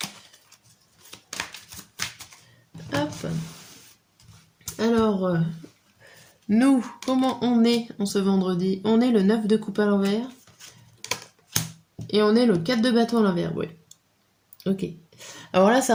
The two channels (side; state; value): both; identical; correlation 1.00